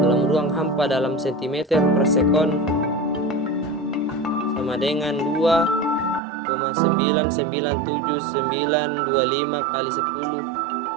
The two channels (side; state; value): left; drops out; at 6.2 s